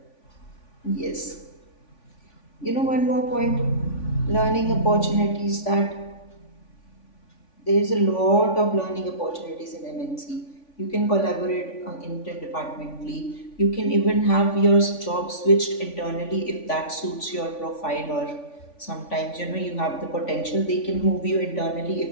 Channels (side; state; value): right; late; 3.5 ms